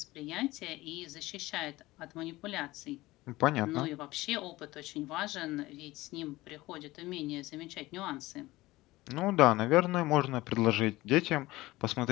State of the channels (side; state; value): right; quieter; 18.9 dB